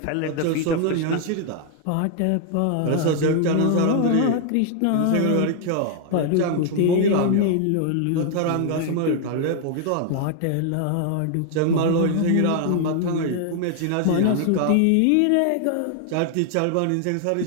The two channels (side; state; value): both; different; correlation 0.00